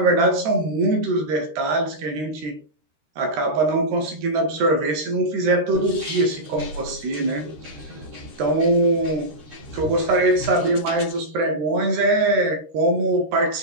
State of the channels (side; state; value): left; late; 13 ms